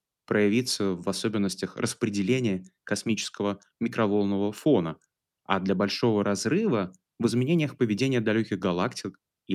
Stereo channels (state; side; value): identical; both; correlation 1.00